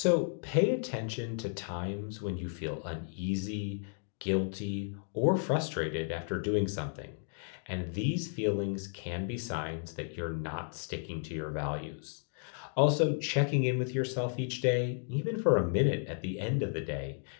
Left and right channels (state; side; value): silent; right; 56 dB below the other